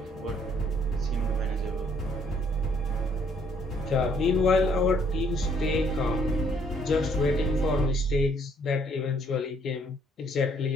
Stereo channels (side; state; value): both; normal; correlation 0.65